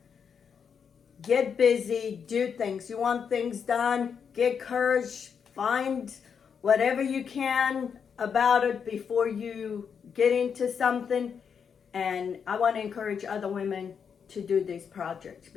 Get busy, do things. You want things done, get courage, find whatever you can about it before you get into something. And I want to encourage other women to do these projects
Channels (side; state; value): right; quieter; 6.8 dB